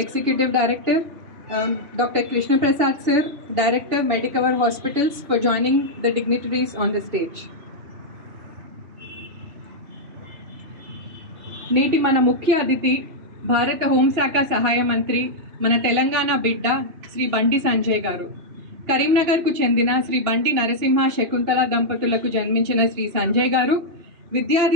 Director, Dr. Krishna Prasad sir, Director, Medicover Hospitals, for joining the dignitaries on the stage. నేటి మన ముఖ్య అతిథి భారత హోంశాఖ సహాయ మంత్రి మన తెలంగాణ బిడ్డ శ్రీ బండి సంజయ్ గారు. కరీంనగర్కు చెందిన శ్రీ బండి నరసింహ శకుంతల దంపతులకు జన్మించిన శ్రీ సంజయ్ గారు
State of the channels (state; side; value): late; left; 2.8 ms